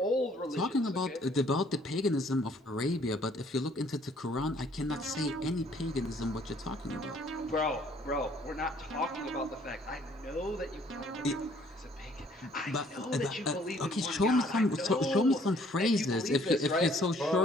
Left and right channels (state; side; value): normal; both; correlation 0.61